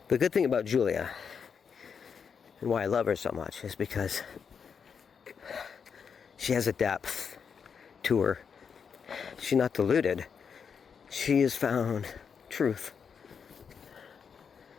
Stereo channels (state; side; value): quieter; right; 6.5 dB